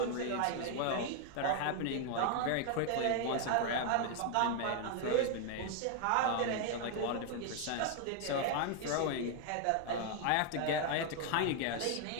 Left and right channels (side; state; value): both; different; correlation 0.00